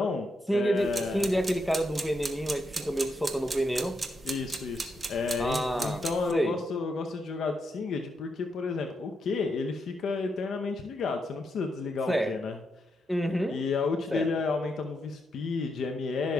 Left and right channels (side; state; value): both; normal; correlation 0.82